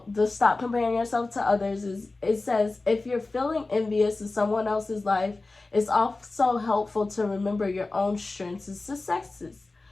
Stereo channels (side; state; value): right; quieter; 3.3 dB